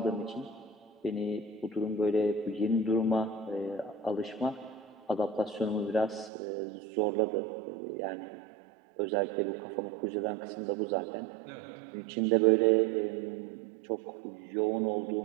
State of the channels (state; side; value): drops out; left; at 6.3 s